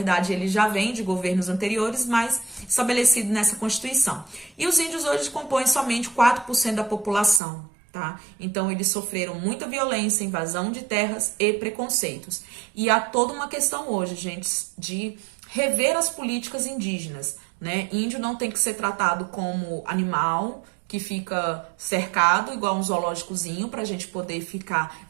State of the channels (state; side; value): drops out; left; at 7.4 s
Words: ele já vem de governos anteriores, mas estabelecido nessa Constituição. E os índios hoje compõem somente 4% da população, tá? Então eles sofreram muita violência, invasão de terras e preconceitos. E há toda uma questão hoje, gente, de rever as políticas indígenas, né? Índio não tem que ser tratado como animal que fica cercado, igual um zoológicozinho, para a gente poder ficar